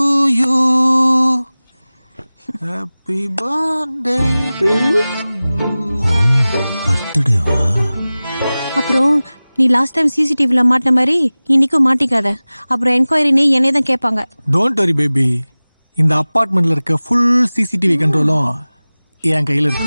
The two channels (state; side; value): inverted; both; correlation -0.98